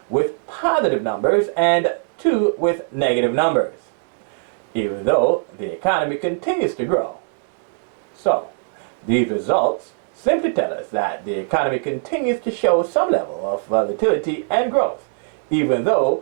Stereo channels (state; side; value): silent; left; digital silence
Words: with positive numbers and 2 with negative numbers, even though the economy continues to grow. So, these results simply tell us that the economy continues to show some level of volatility and growth, even